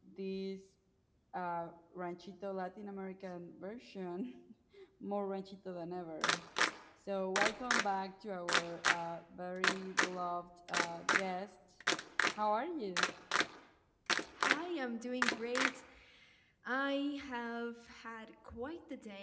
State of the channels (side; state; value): both; identical; correlation 1.00